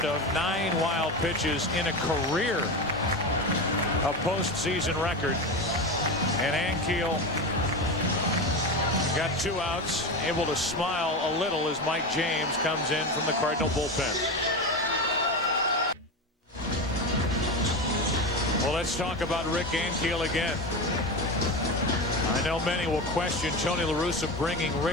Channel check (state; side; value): normal; both; correlation 0.21